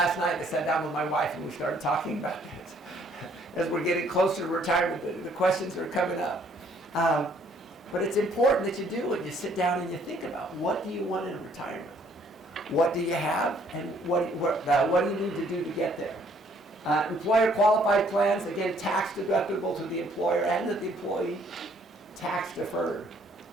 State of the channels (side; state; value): both; normal; correlation 0.63